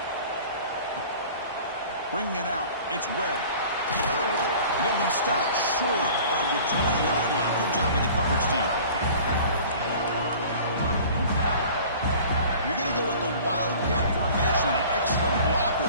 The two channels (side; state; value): both; inverted; correlation -0.45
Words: Bringing it out. It's Webb. They'll be stopped short of the 20-yard line. Good job by the coverage team. You're going to go with the Wildcat formation, an extra blocker.